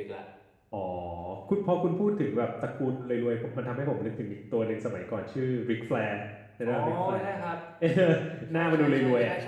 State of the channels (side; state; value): both; identical; correlation 1.00